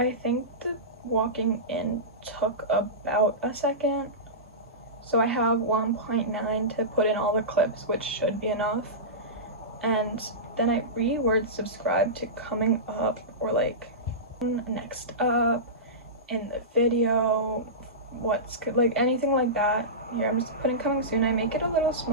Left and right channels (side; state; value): both; normal; correlation -0.18